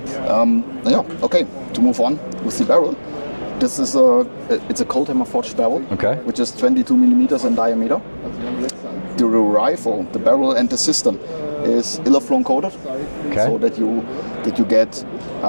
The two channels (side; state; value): both; inverted; correlation -1.00